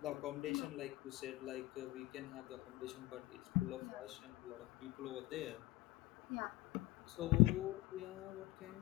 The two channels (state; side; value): quieter; right; 19.0 dB